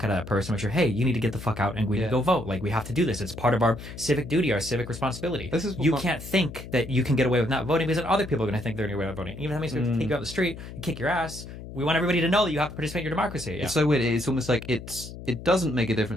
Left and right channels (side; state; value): left; noise; hum, 12 dB below the sound